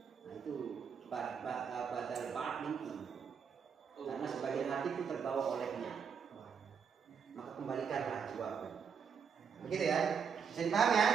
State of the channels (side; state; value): left; quieter; 6.7 dB